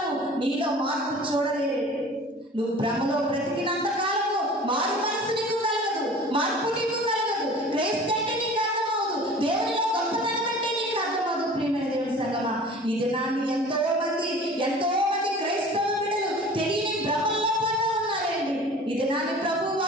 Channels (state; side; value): normal; both; correlation 0.43